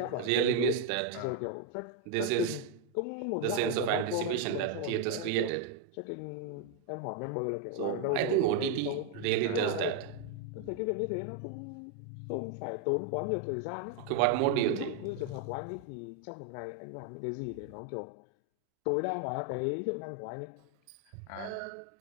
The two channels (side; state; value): both; different; correlation 0.01